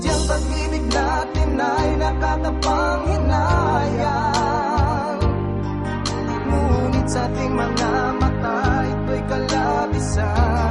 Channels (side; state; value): both; identical; correlation 1.00